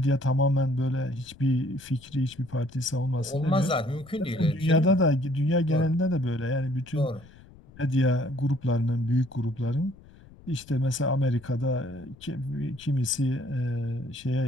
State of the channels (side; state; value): left; noise; rumble, 23 dB below the sound